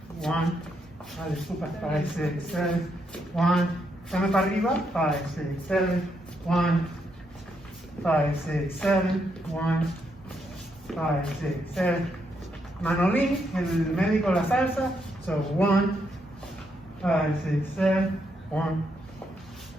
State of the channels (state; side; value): normal; both; correlation 0.78